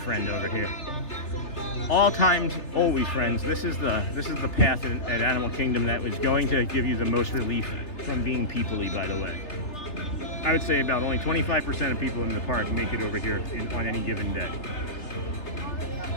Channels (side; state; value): right; late; 3.3 ms